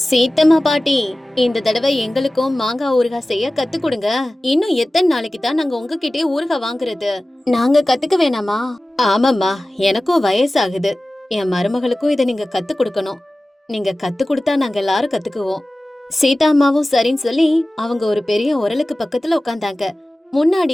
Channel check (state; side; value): normal; both; correlation 0.97